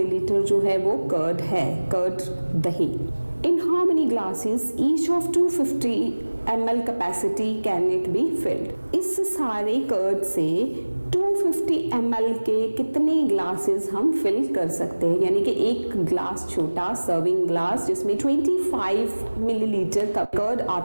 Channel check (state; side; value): inverted; both; correlation -1.00